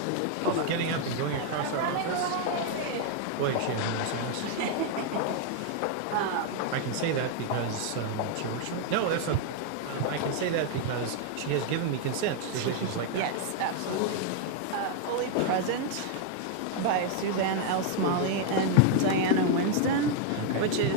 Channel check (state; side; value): different; both; correlation 0.00